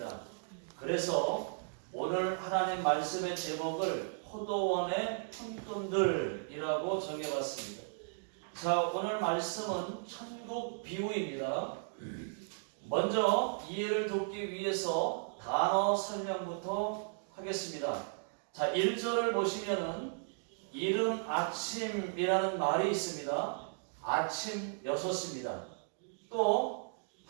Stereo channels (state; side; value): silent; left; digital silence